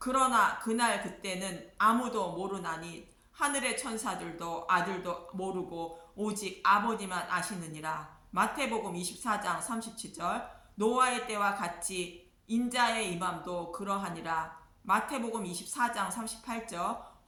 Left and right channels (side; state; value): both; identical; correlation 1.00